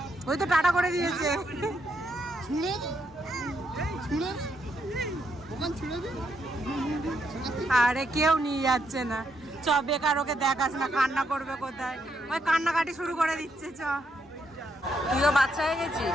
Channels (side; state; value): both; normal; correlation 0.78